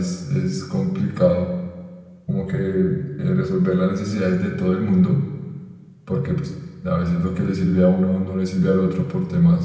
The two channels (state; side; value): identical; both; correlation 1.00